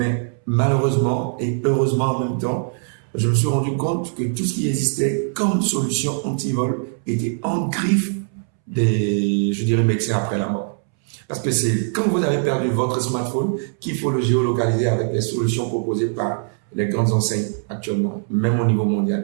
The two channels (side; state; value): left; silent; 65 dB below the other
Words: malheureusement et heureusement en même temps, je me suis rendu compte que tout ce qui existait comme solution anti-vol était en griffe des, je dirais, médecins après la mort. Parce que c'est quand vous avez perdu votre smartphone qu'il faut le géolocaliser avec les solutions proposées par les grandes enseignes actuellement, même au niveau